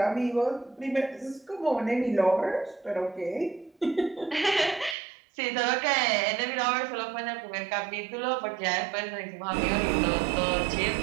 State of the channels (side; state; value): left; drops out; at 5.0 s